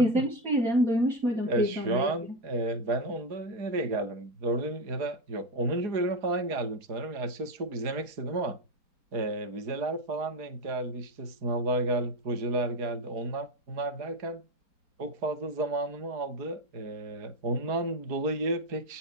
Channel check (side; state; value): left; late; 4.8 ms